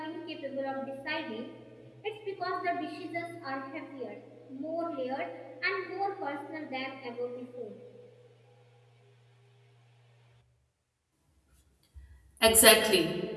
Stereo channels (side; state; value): both; identical; correlation 1.00